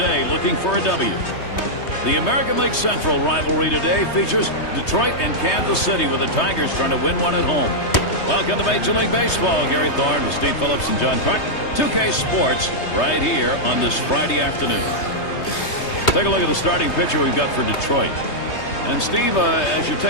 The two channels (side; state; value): right; late; 3.2 ms